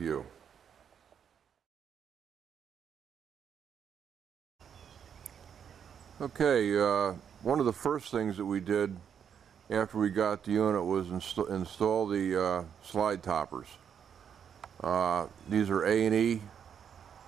Okay, one of the first things that we did after we got the unit was install the slide toppers. These are A&E,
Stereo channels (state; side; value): quieter; left; 7.9 dB